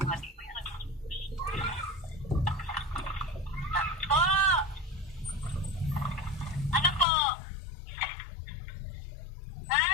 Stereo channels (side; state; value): right; drops out; at 7.1 s